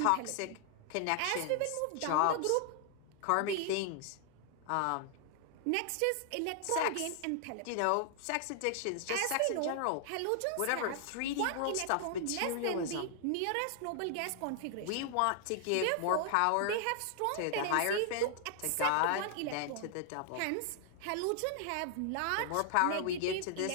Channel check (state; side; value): different; both; correlation 0.00